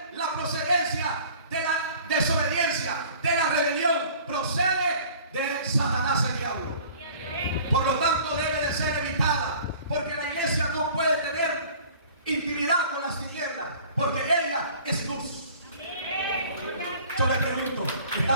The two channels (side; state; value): both; inverted; correlation -0.48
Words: la procedencia de la desobediencia, de la rebelión. Procede de Satanás, el diablo. Por lo tanto, debe de ser evitada, porque la iglesia no puede tener intimidad con las tinieblas, porque ella es luz. Yo le pregunto,